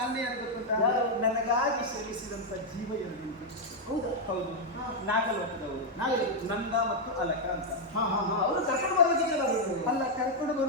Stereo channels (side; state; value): both; normal; correlation -0.01